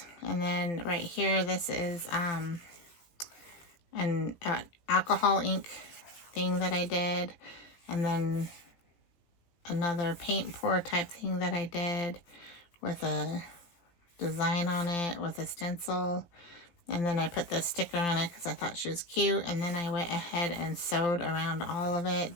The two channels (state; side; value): late; right; 17 ms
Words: and then right here this is an alcohol ink thing that I did, and then another paint pour type thing that I did with a design on it with a stencil. And then I put the sticker on it because I thought she was cute. And then I went ahead and sewed around all of